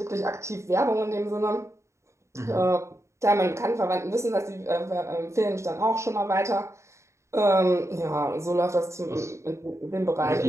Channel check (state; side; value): late; left; 0.14 ms